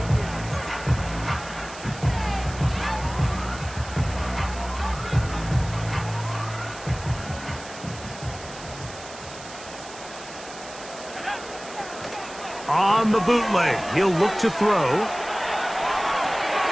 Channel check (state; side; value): noise; right; hiss, 15 dB below the sound